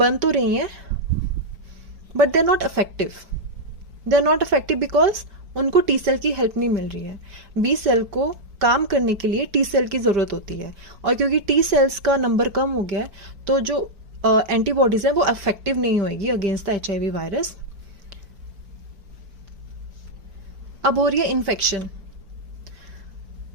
तो रही हैं but they are not effective. They are not effective because उनको टी सेल की हेल्प नहीं मिल रही है। बी सेल को काम करने के लिए टी सेल की जरूरत होती है, और क्योंकि टी सेल्स का नंबर कम हो गया है तो जो एंटीबॉडीज है वो इफेक्टिव नहीं होगी अगेंस्ट द HIV वायरस। अब हो रही है इन्फेक्शन।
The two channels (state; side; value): late; left; 5.1 ms